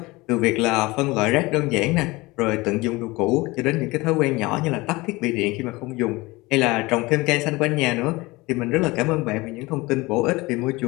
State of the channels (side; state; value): right; quieter; 22.2 dB